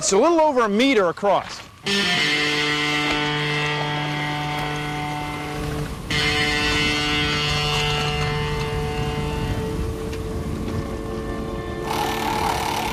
a little over 1 meter across.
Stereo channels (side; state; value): both; identical; correlation 1.00